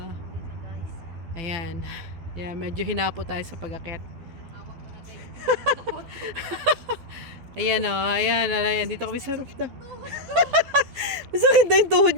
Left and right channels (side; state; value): left; late; 12 ms